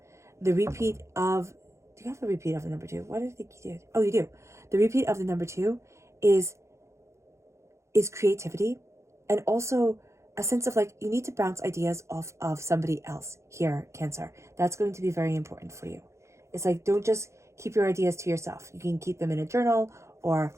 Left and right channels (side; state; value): left; late; 0.14 ms